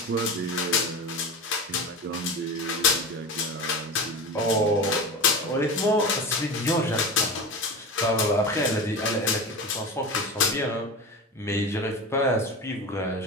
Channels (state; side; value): normal; both; correlation 0.27